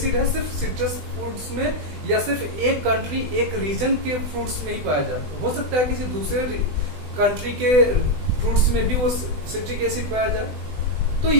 है सिर्फ सिट्रस फ्रूट्स में या सिर्फ एक कंट्री एक रीजन के फ्रूट्स में ही पाया जाता, हो सकता है किसी दूसरे कंट्री के फ्रूट्स में भी वो सिट्रिक एसिड पाया जाए, तो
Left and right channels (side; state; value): left; late; 20 ms